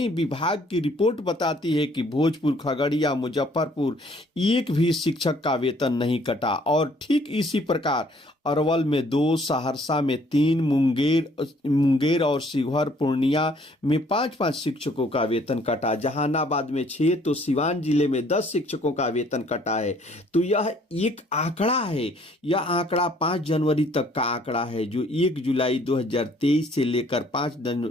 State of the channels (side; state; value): both; normal; correlation 0.61